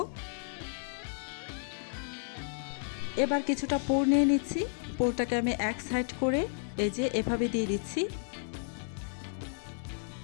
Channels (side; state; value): right; silent; 56 dB below the other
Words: এবার কিছুটা পুর নিয়ে নিচ্ছি, পুরটাকে আমি এক সাইড করে এই যে এভাবে দিয়ে দিচ্ছি।